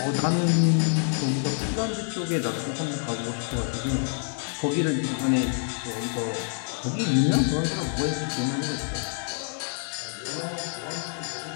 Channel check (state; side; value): silent; right; 58 dB below the other